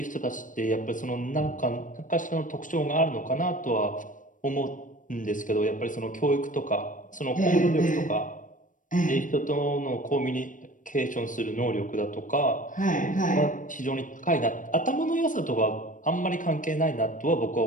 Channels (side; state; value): right; late; 0.38 ms